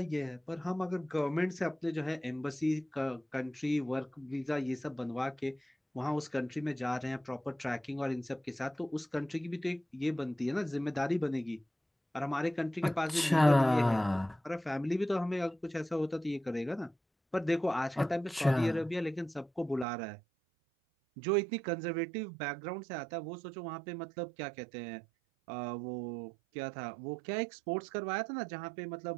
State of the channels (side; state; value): left; drops out; at 19.9 s